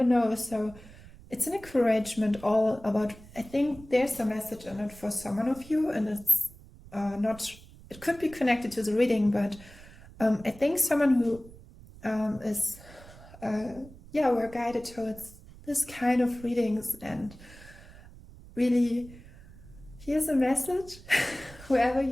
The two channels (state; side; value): noise; right; rumble, 20 dB below the sound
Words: so it's an encouragement all about, I think there's a message in it for someone of you, and it's not, it could be connected to the reading, but I think someone who is we're guided towards this kind of readings, and really here's a message whoever